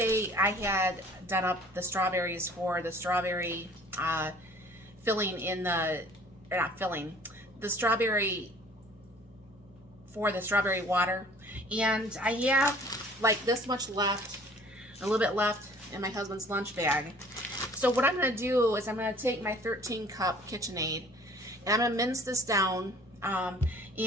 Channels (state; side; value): normal; both; correlation 0.52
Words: I had done up the strawberries for the strawberry filling in the, or not filling, the strawberry for the strawberry water. And I have like this much left, a little bit left in my husband's lunch bag. So what I'm going to do is I'm going to take my 13 cup KitchenAid and I'm going to mince this down.